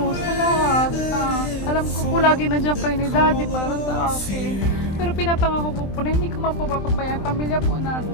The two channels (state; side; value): late; right; 23 ms